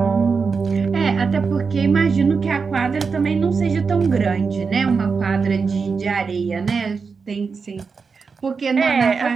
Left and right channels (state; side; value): quieter; left; 5.1 dB